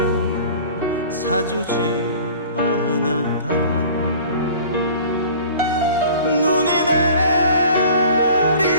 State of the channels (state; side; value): inverted; both; correlation -0.46